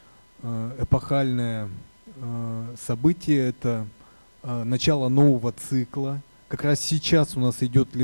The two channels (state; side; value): inverted; both; correlation -1.00